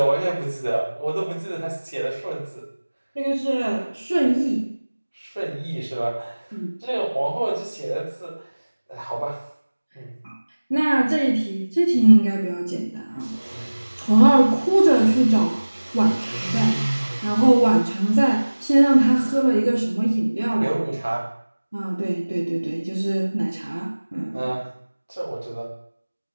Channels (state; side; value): inverted; both; correlation -1.00